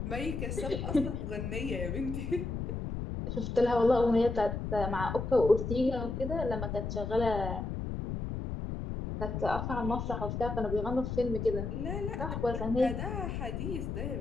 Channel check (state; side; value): noise; left; rumble, 4 dB below the sound